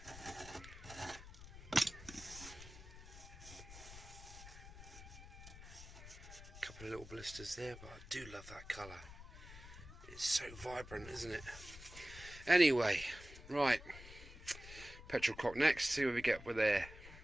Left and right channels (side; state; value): left; noise; rumble, 15 dB below the sound